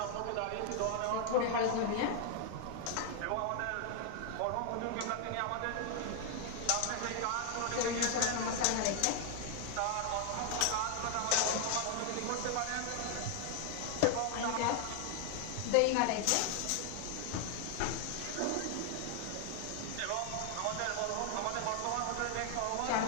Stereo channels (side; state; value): both; different; correlation 0.00